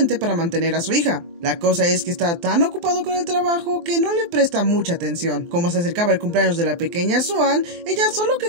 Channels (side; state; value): left; late; 23 ms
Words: para mantener a su hija. La cosa es que está tan ocupado con el trabajo que no le presta mucha atención. Como se acercaba el cumpleaños de la pequeña Swan, ella solo